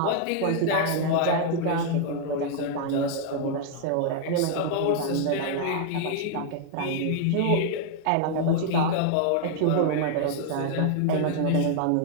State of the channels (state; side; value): different; both; correlation 0.00